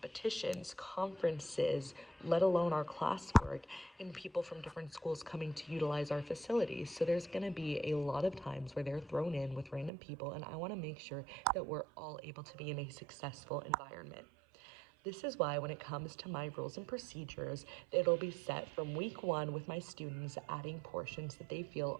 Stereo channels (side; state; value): left; drops out; at 9.9 s